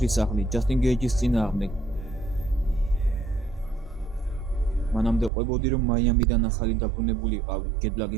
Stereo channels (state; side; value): drops out; left; at 5.3 s